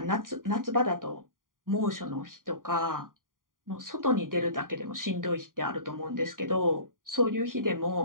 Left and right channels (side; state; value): left; late; 0.90 ms